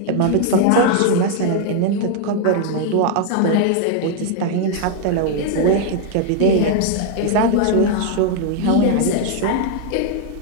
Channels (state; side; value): different; both; correlation 0.00